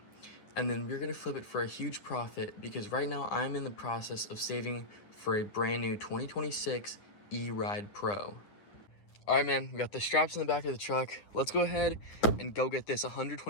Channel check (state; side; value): late; right; 9.8 ms